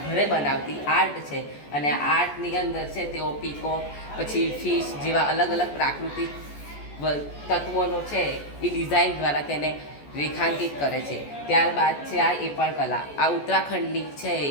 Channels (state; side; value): late; right; 14 ms